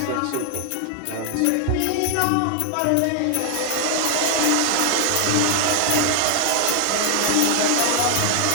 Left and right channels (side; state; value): both; different; correlation 0.00